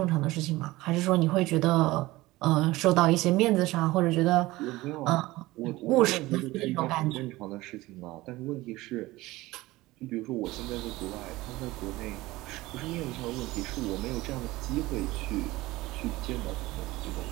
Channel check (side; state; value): left; quieter; 19.1 dB